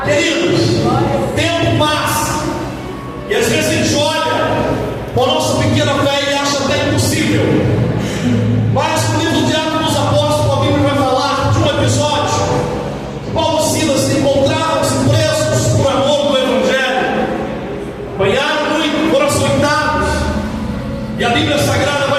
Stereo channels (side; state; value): both; identical; correlation 1.00